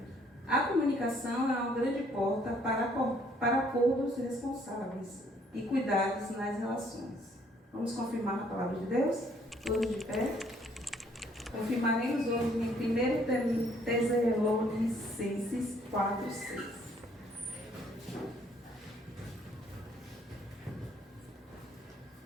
A comunicação é uma grande porta para acordos responsáveis e cuidados nas relações. Vamos confirmar a palavra de Deus? Todos de pé. Confirmaremos hoje em 1 Tessalonicenses 4:6.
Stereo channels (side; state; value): both; normal; correlation 0.64